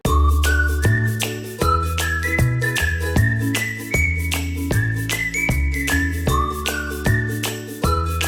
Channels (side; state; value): both; identical; correlation 1.00